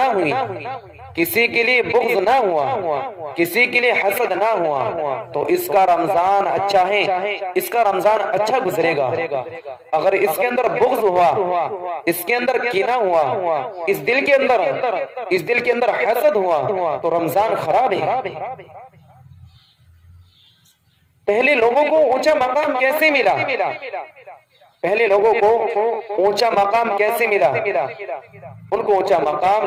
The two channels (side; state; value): both; identical; correlation 1.00